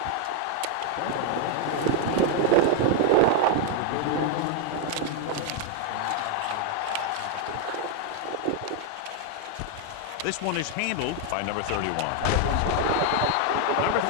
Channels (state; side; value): different; both; correlation 0.00